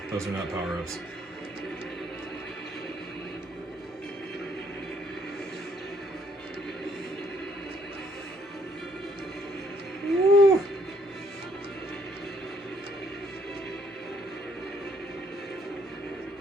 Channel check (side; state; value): both; normal; correlation 0.67